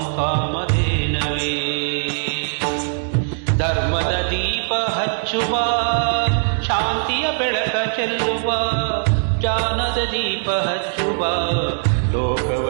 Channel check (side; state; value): left; silent; 65 dB below the other